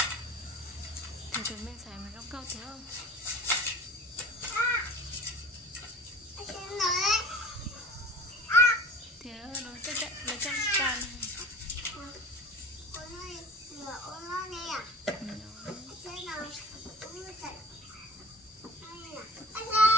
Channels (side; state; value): both; normal; correlation 0.40